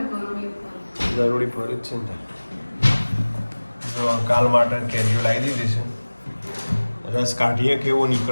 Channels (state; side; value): inverted; both; correlation -1.00